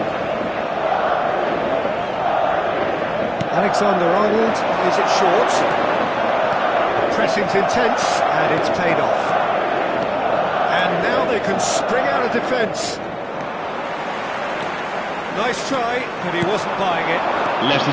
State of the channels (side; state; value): both; identical; correlation 1.00